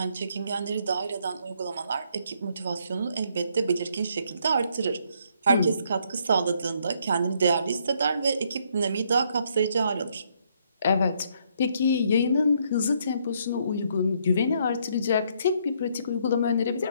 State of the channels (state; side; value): inverted; both; correlation -0.70